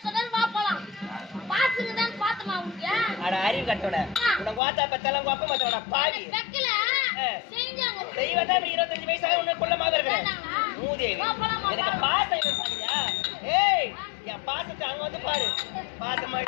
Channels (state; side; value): drops out; right; at 4.6 s